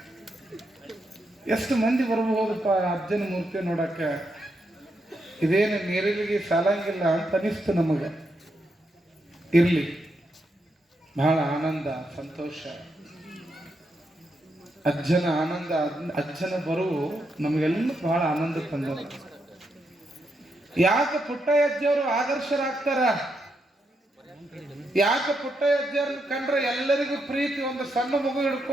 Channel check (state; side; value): normal; both; correlation 0.82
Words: ಎಷ್ಟು ಮಂದಿ ಬರ್ಬಹುದಪ್ಪ ಅಜ್ಜನ ಮೂರ್ತಿ ನೋಡಕ್ಕ, ಇದೇನು ನೀರಿಲಿಗೆ ಸಾಲಂಗಿಲ್ಲ ಅಂತ ಅನಿಸ್ತು ನಮಗೆ. ಇರ್ಲಿ, ಬಹಳ ಆನಂದ ಸಂತೋಷ. ಅಜ್ಜನ ಆನಂದ, ಅಜ್ಜನ ಬರುವು ನಮಗೆಲ್ಲ ಬಹಳ ಆನಂದ ತಂದ. ಯಾಕೆ ಪುಟ್ಟಯ್ಯಜ್ಜವರು ಆದರ್ಶರಾಗ್ತಾರ? ಯಾಕೆ ಪುಟ್ಟಯ್ಯಜ್ಜರನ್ನ ಕಂಡ್ರೆ ಎಲ್ಲರಿಗೂ ಪ್ರೀತಿ? ಒಂದು ಸಣ್ಣ ಮಗು